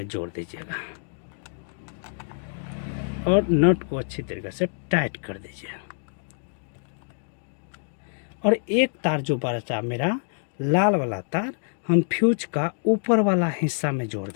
जोड़ दीजिएगा और नट को अच्छी तरीके से टाइट कर दीजिए। और एक तार जो बचा मेरा लाल वाला तार, हम फ्यूज का ऊपर वाला हिस्सा में जोड़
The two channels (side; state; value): right; silent; digital silence